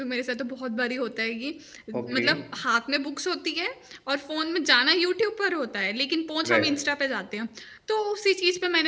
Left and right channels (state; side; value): identical; both; correlation 1.00